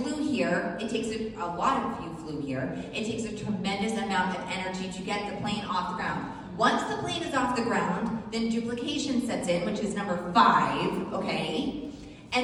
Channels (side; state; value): both; identical; correlation 1.00